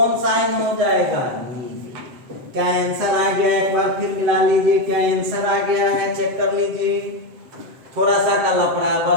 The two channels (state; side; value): late; left; 7.7 ms